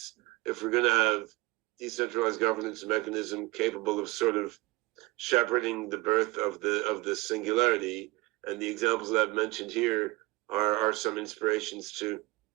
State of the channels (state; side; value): quieter; left; 22.3 dB